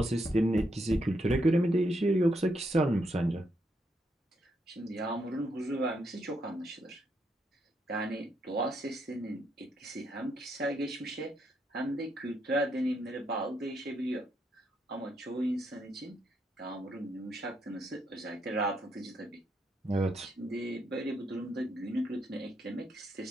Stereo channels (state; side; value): normal; both; correlation 0.77